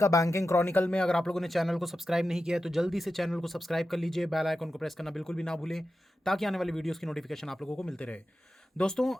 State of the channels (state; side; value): normal; both; correlation 0.91